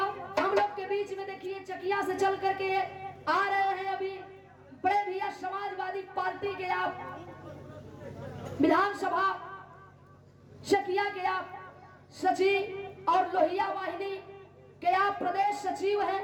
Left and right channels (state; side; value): identical; both; correlation 1.00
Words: लोग के बीच में देखिए चकिया से चल करके आ रहे हैं अभी बड़े भैया समाजवादी पार्टी पार्टी के आप विधानसभा शकिया के आप सचिव और लोहिया वाहिनी के आप प्रदेश सचिव हैं